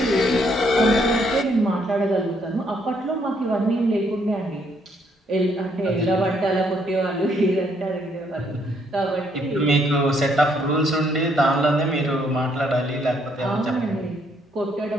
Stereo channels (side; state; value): both; normal; correlation 0.70